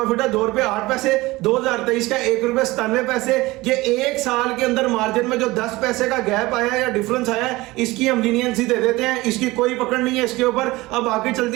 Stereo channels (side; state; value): left; quieter; 20.3 dB